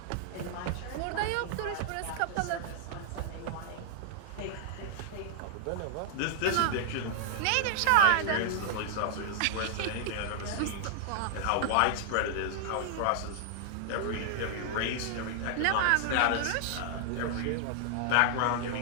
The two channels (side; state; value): both; different; correlation -0.01